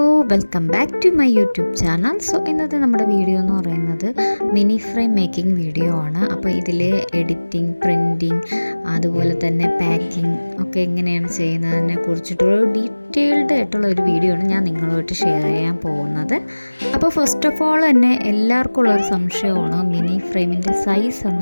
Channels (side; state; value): both; inverted; correlation -1.00